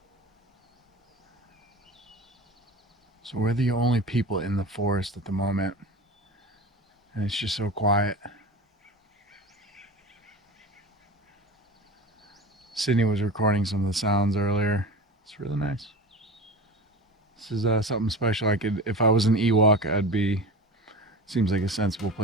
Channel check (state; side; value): normal; both; correlation 0.32